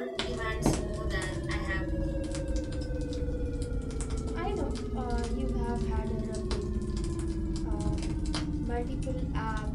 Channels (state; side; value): identical; both; correlation 1.00